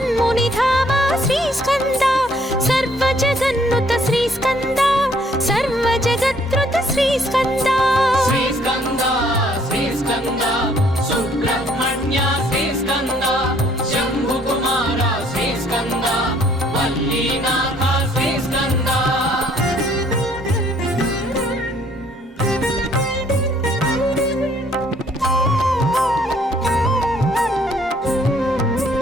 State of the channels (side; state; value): both; normal; correlation 0.62